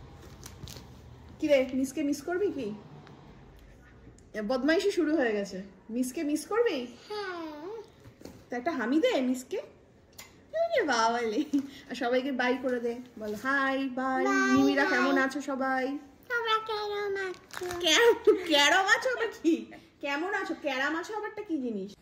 কি রে, মিসকে মিস করবি কি? বদমাইশি শুরু হয়ে গেছে। মিসকে মিস করবি? তা একটা হামি দে মিসকে। বাবালে, আর সবাইকে বাই করে দে, বল হাই বাই। মিমিরা কেমন আছো সবাই? তোমরা কেমন আছো? ক্যারম আছো আবার কি? কেমন আছো? ক্যারাম আছো আবারটা কি জিনিস?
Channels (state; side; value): identical; both; correlation 1.00